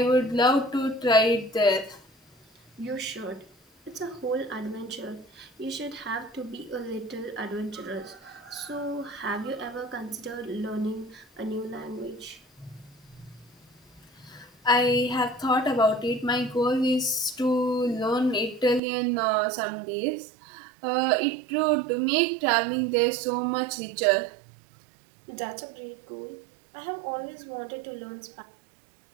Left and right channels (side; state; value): left; drops out; at 18.8 s